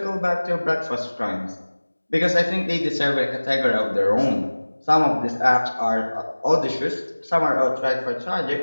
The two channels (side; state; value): both; inverted; correlation -1.00